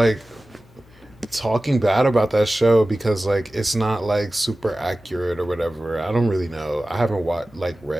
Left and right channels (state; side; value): noise; left; hum, 27 dB below the sound